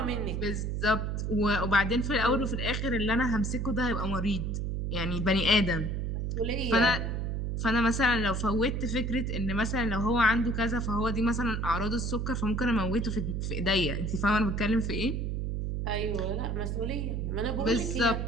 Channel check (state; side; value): noise; right; hum, 1 dB below the sound